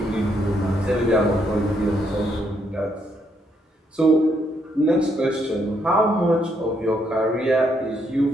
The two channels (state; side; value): normal; both; correlation 0.74